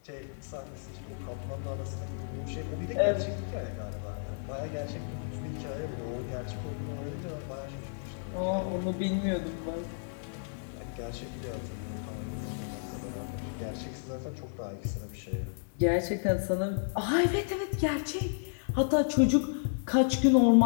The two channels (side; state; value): right; silent; digital silence